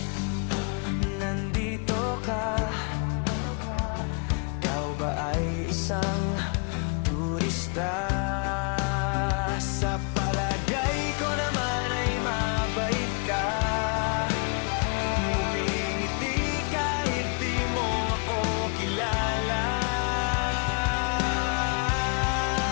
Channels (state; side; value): quieter; right; 37.1 dB